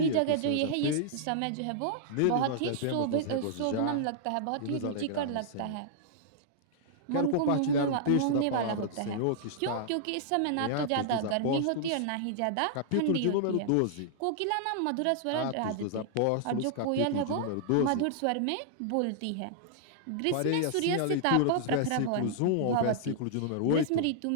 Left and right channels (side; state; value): both; different; correlation -0.01